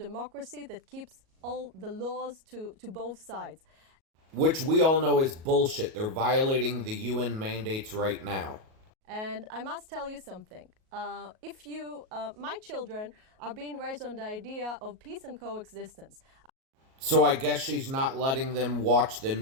that keeps all the laws to both sides. Which we all know is bullshit. They're violating the UN mandates right now. And I must tell you something. My children are being raised on the idea of peace and coexistence. So I guess she's not letting them watch the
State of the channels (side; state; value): left; late; 37 ms